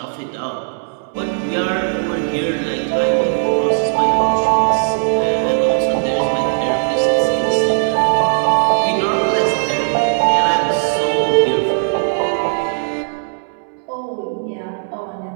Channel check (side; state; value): left; silent; 66 dB below the other